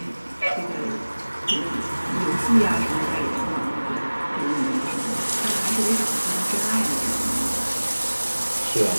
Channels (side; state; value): both; inverted; correlation -1.00